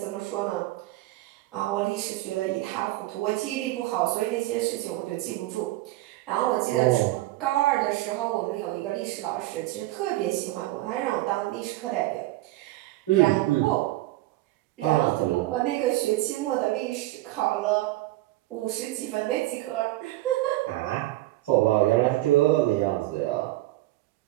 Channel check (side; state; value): left; quieter; 17.4 dB